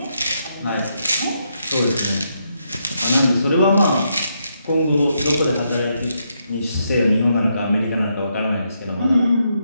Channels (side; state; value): both; inverted; correlation -0.79